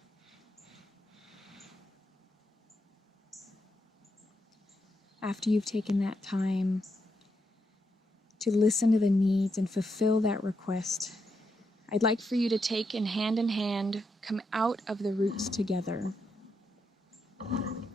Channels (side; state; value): both; normal; correlation 0.82